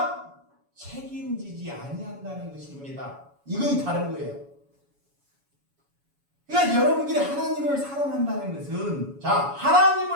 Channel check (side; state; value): left; late; 7.1 ms